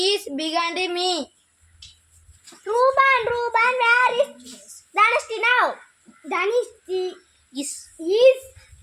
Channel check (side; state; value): both; identical; correlation 1.00